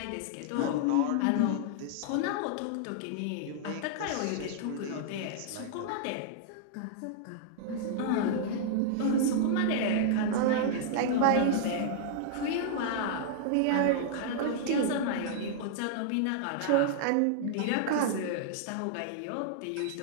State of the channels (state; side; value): different; both; correlation -0.01